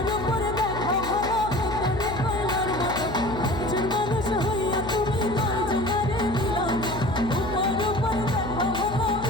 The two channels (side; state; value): left; noise; hum, 10 dB below the sound